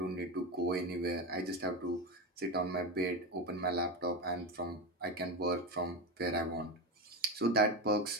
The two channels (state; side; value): normal; both; correlation 0.17